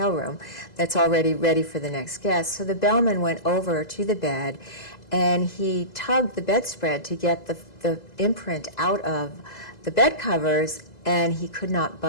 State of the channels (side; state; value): right; late; 2.0 ms